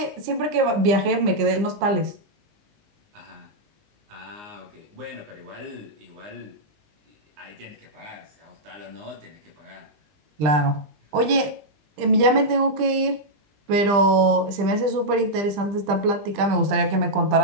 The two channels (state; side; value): late; left; 20 ms